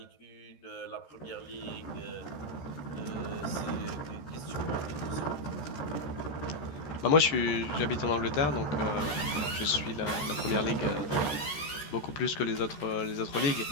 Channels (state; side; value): late; right; 14 ms